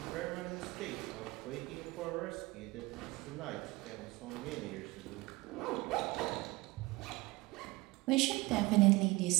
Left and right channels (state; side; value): quieter; left; 21.9 dB